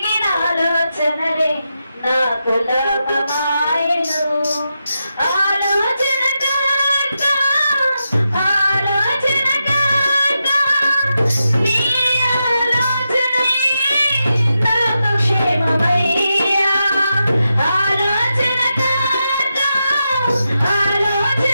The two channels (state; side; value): inverted; both; correlation -0.88